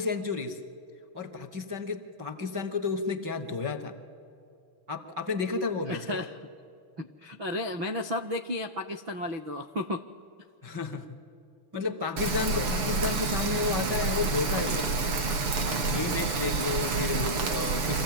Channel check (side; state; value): left; late; 6.8 ms